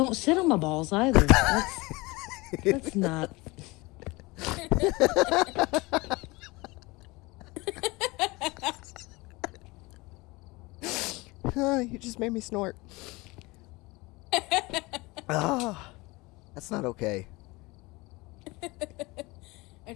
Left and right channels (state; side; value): quieter; right; 23.3 dB